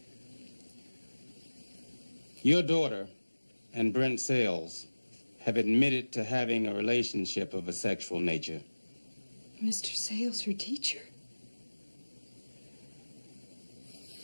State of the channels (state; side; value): inverted; both; correlation -1.00